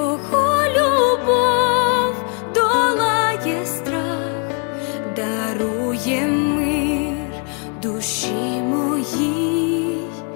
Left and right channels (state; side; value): quieter; right; 37.5 dB